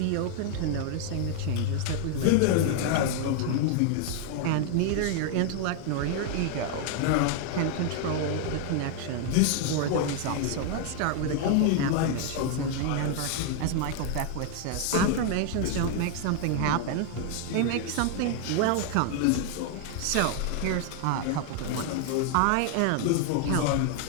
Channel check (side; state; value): both; different; correlation 0.00